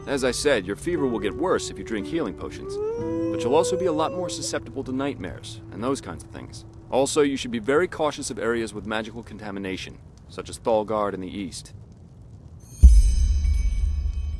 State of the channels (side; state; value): both; identical; correlation 1.00